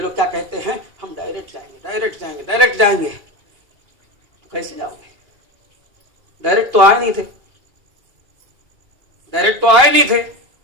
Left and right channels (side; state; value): left; late; 2.8 ms